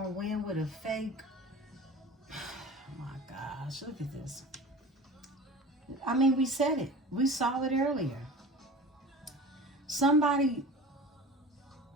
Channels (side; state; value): both; normal; correlation 0.37